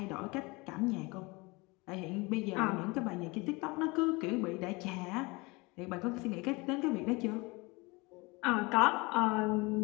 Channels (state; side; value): quieter; right; 25.4 dB